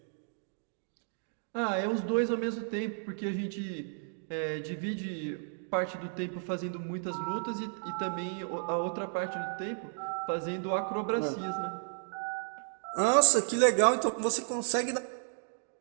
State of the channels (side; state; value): left; silent; digital silence